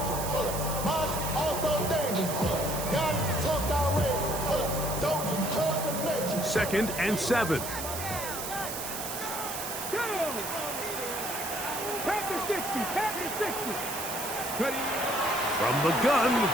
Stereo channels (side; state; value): right; noise; hiss, 6 dB below the sound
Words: Mine also dangerous. Y'all need to talk outrageous. Don't you talk the nature. Second and 7. From the gun,